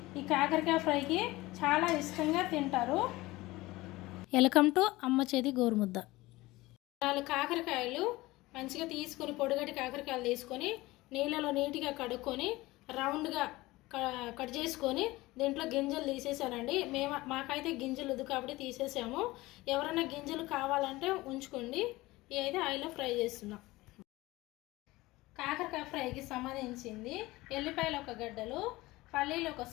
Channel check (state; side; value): quieter; right; 19.7 dB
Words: ఈ కాకరకాయ ఫ్రైకి చాలా ఇష్టంగా తింటారు. వెల్కమ్ టు అమ్మ చేతి గోరుముద్ద. 4 కాకరకాయలు మంచిగా తీసుకొని పొడిగట్టి కాకరకాయలు తీసుకొని నీళ్ళలో నీట్గా కడుక్కొని రౌండ్గా కట్ చేసుకొని దీంట్లో గింజలు తీసేసానండి. మాకైతే గింజలు వద్దు కాబట్టి తీసేసాము. ఎవరైనా గింజలు కావాలంటే ఉంచుకోండి. ఇవి అయితే ఆయిల్లో ఫ్రై చేస్తున్నాం. కాకరకాయ ఫ్రైకి సంబంధించింది ఎల్లిపాయలు 1 గడ్డలు, పల్లీలు 1